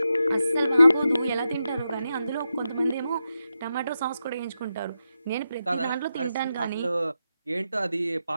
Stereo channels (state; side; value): inverted; both; correlation -0.88